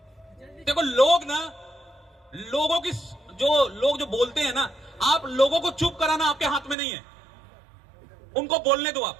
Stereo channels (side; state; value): left; drops out; at 6.8 s